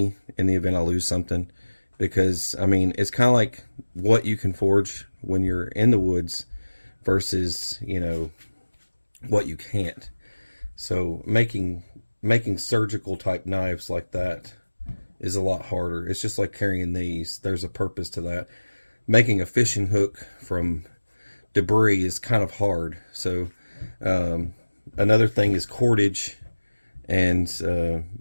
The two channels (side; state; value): both; inverted; correlation -1.00